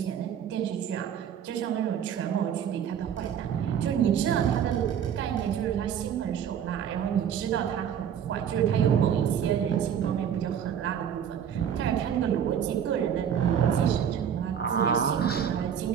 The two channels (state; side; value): quieter; left; 8.7 dB